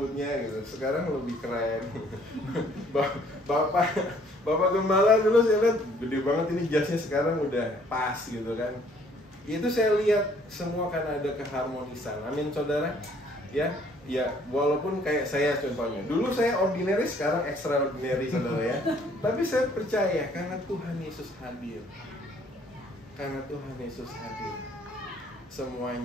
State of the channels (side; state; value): both; normal; correlation 0.61